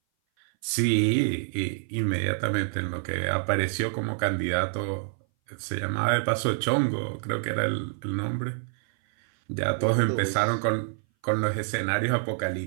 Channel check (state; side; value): silent; left; 58 dB below the other